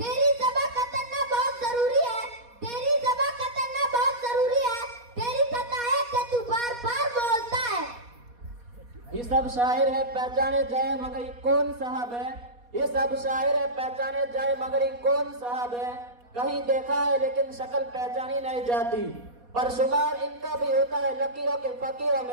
ज़बान का तन्ना बहुत जरूरी है, तेरी ज़बान का तन्ना बहुत जरूरी है, तेरी खता है कि तू बार बार बोलता है। ये सब शायर है पहचाने जाए मगर ये कौन साहब है, ये सब शायर है पहचाने जाए मगर ये कौन साहब है। कहीं देखा है लेकिन शक्ल पहचानी नहीं जाती, पर शुमार इनका भी होता है लकीरों के फकीरों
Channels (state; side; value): late; left; 4.2 ms